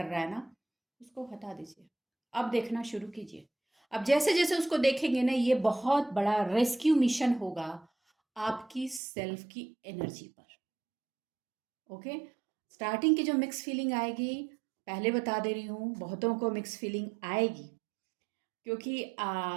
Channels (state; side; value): drops out; left; at 9.0 s